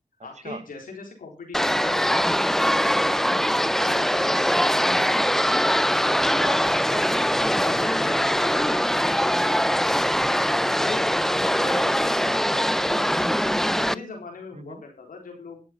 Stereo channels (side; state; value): both; normal; correlation 0.96